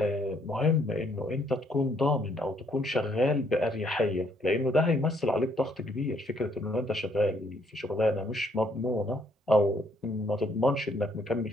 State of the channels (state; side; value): normal; both; correlation 0.68